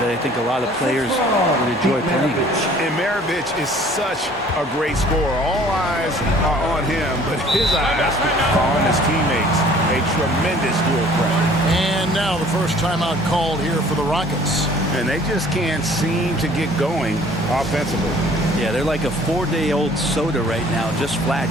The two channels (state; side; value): normal; both; correlation 0.53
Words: I think a lot of players would enjoy playing. And Maravich is such a great scorer. All eyes are on him, but his eyes are on his teammates. A tremendous dual threat. And now the first timeout called here for the Rockets. And they just can't seem to get going offensively. Yeah, they're like a 4-day-old soda right now, just flat.